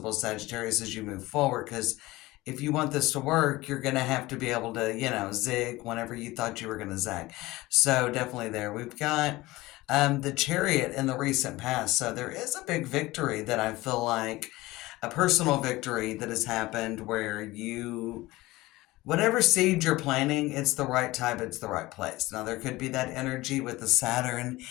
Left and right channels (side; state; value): right; quieter; 19.3 dB